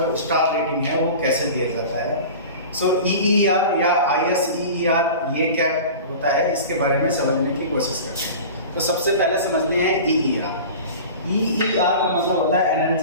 स्टार रेटिंग है वो कैसे दिया जाता है। सो EER या ISEER ये क्या होता है, इसके बारे में समझने की कोशिश करते हैं। तो सबसे पहले समझते हैं EER। EER का मतलब होता है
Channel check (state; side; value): inverted; both; correlation -0.36